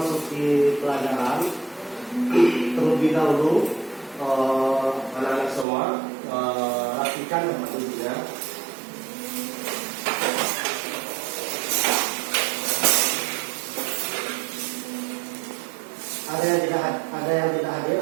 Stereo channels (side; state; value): left; drops out; at 5.7 s